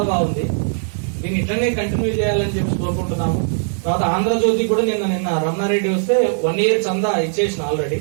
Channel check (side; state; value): left; silent; 60 dB below the other